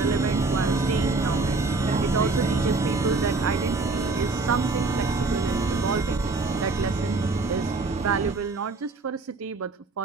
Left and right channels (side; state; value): left; quieter; 3.6 dB